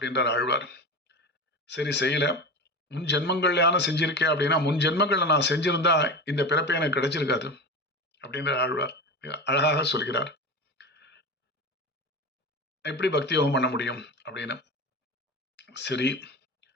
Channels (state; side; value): normal; both; correlation 0.27